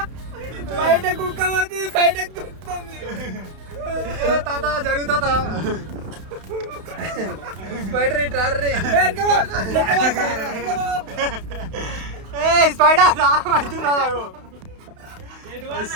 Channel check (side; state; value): left; late; 31 ms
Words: బయట కుక్క పోతుంది, బయట తాత జరుగుతా స్పైడర్ స్పైడర్ అవుతుందా?